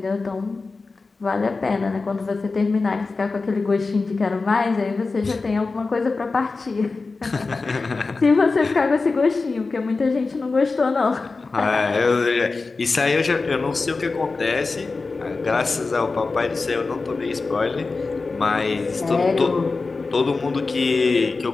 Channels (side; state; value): right; quieter; 3.9 dB